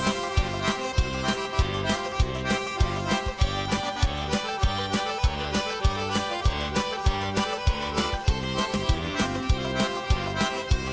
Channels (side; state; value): both; identical; correlation 1.00